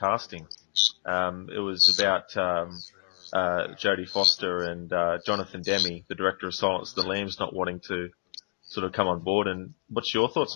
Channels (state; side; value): silent; right; digital silence